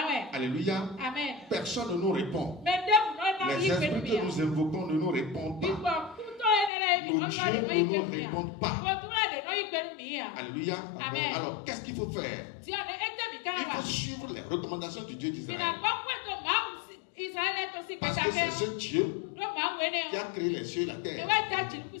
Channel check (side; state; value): right; drops out; at 6.7 s